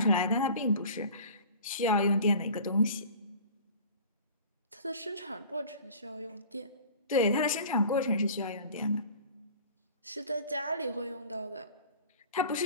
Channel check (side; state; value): both; inverted; correlation -0.43